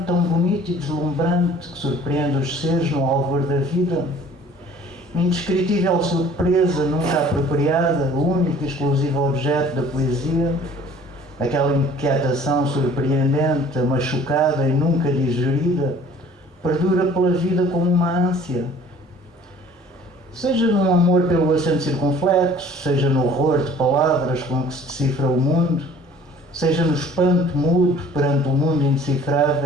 tão bonito e deslumbrante que surpreende os seres no alvor da vida, indescritível surpresa nunca apropriada, único e exclusivo objeto da poesia, aquela inquietação surpreendente, machucada e nunca digerida, perdura pela vida como uma ânsia. Seja num amor pelo acento circunflexo, seja no horror de palavras com que se decifra o mundo, seja no espanto mudo perante o mundo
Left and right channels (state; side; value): normal; both; correlation 0.51